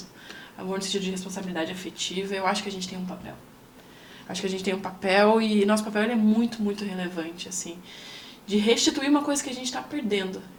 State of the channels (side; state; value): both; identical; correlation 1.00